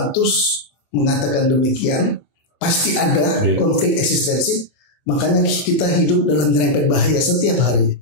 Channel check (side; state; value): right; late; 24 ms